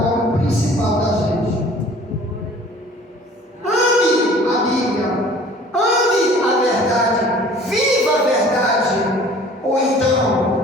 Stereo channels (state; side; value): normal; both; correlation 0.49